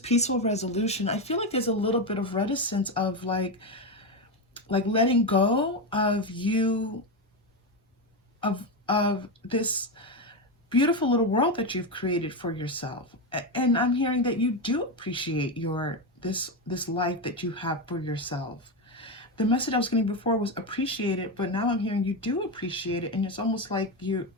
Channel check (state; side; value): normal; both; correlation 0.12